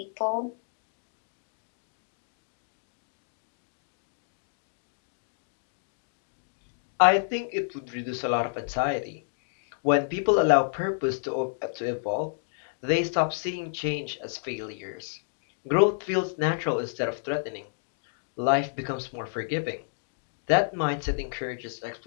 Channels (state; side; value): silent; right; digital silence